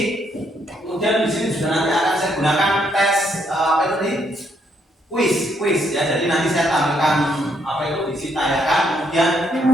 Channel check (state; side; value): normal; both; correlation 0.73